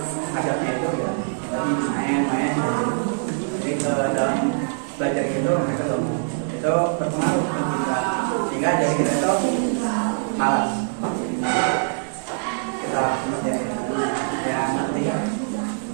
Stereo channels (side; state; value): left; silent; 63 dB below the other